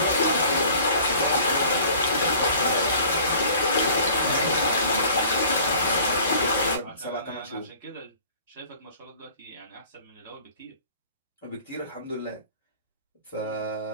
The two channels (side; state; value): both; inverted; correlation -0.49